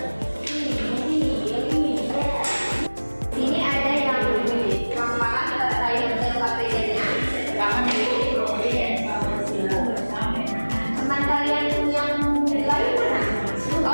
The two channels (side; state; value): both; inverted; correlation -1.00